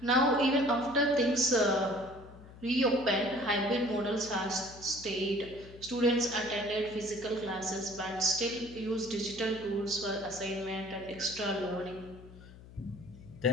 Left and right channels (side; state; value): left; noise; hum, 18 dB below the sound